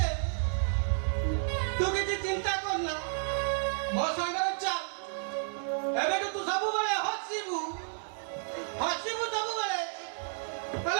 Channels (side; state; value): left; silent; 57 dB below the other